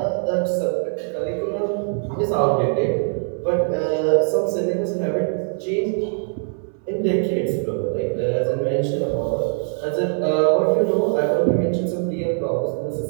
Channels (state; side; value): silent; left; 64 dB below the other